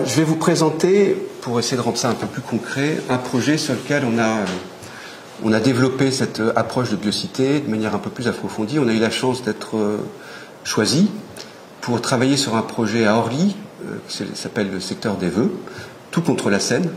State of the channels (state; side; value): identical; both; correlation 1.00